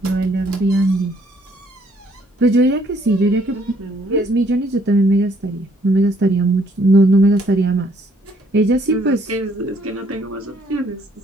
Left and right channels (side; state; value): both; normal; correlation 0.65